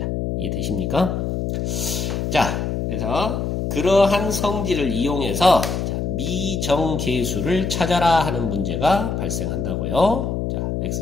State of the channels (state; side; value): noise; left; hum, 1 dB below the sound